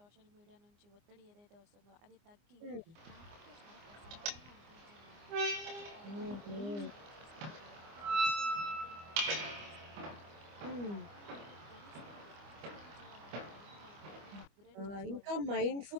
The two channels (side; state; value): left; late; 25 ms